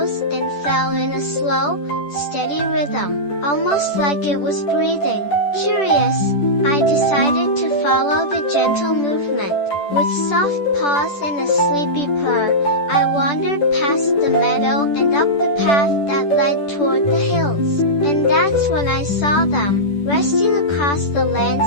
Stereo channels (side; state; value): right; late; 10 ms